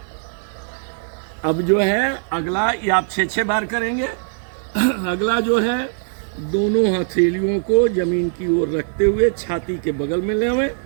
अब जो है अगला, ये आप 6-6 बार करेंगे। अगला जो है, दोनों हथेलियों को जमीन की ओर रखते हुए छाती के बगल में लेवें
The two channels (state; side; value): silent; left; digital silence